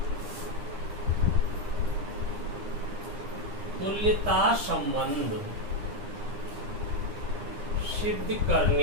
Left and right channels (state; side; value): late; left; 9.8 ms